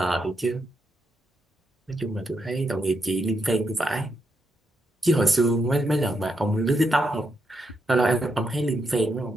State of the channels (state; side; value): normal; both; correlation 0.81